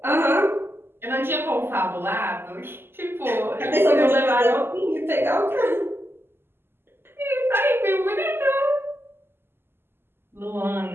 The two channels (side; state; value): left; late; 0.11 ms